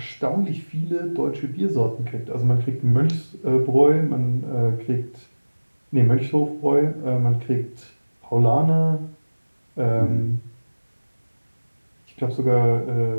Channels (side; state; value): both; inverted; correlation -1.00